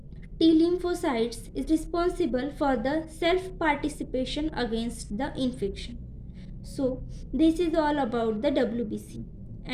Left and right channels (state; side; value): identical; both; correlation 1.00